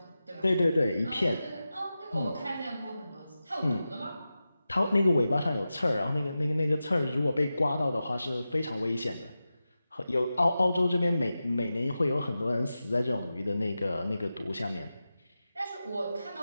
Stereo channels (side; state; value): both; inverted; correlation -0.93